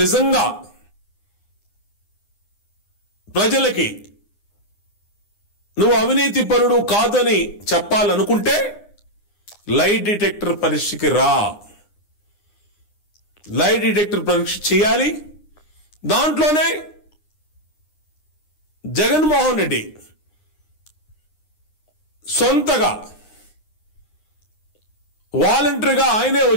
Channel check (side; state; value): right; late; 9.7 ms